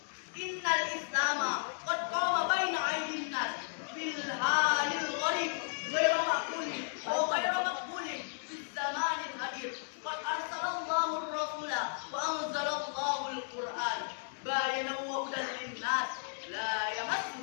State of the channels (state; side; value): silent; right; digital silence